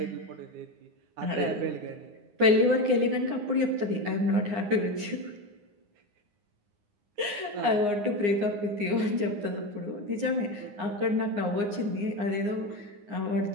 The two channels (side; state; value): left; late; 9.7 ms